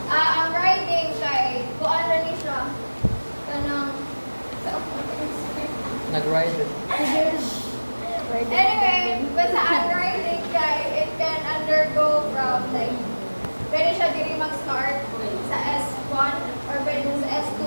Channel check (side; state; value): both; inverted; correlation -1.00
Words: Ang riding kay, kuan na ni siya. Kanang, Nag-ride it. anyway, basta ang riding kay, it can undergo from like, pwede siya diri mag-start sa S1 or pwede sa S2.